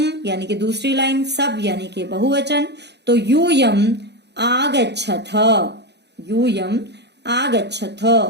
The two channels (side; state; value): left; late; 0.50 ms